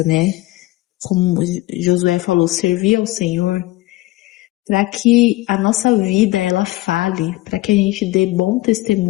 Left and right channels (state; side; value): quieter; right; 18.8 dB